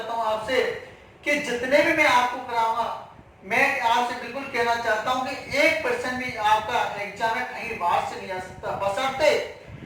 हूं आपसे कि जितने भी मैं आपको कराऊंगा, मैं आपसे बिल्कुल कहना चाहता हूं कि 1% भी आपका एग्जाम में कहीं बाहर से नहीं आ सकता, बशर्ते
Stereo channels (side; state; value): both; identical; correlation 1.00